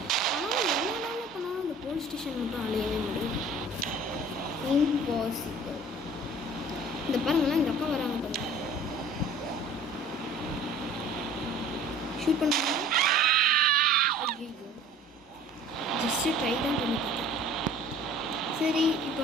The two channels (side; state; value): both; normal; correlation 0.48